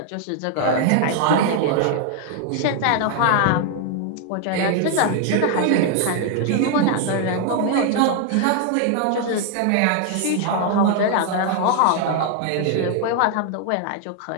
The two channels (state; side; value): different; both; correlation 0.00